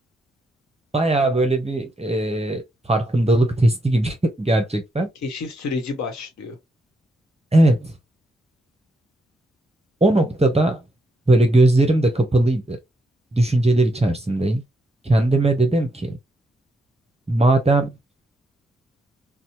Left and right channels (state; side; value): normal; both; correlation 0.80